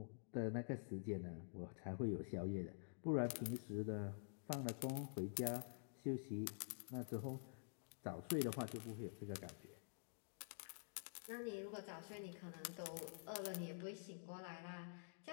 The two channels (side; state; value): right; silent; digital silence